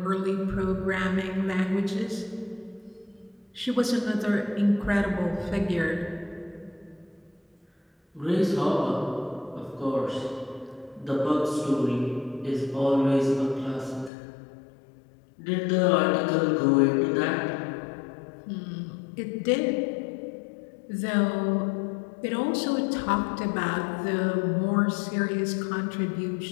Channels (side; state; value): right; drops out; at 14.1 s